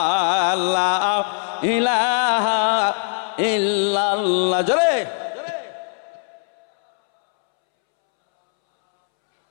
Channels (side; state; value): right; silent; 65 dB below the other